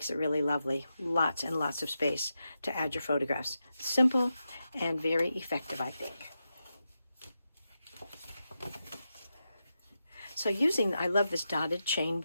it really lovely. Lots and lots of space to add your photographs. Simple and very effective, I think. So I love this dotted chain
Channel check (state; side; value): inverted; both; correlation -0.89